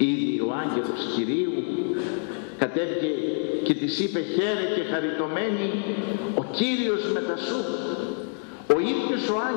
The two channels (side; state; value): right; silent; 61 dB below the other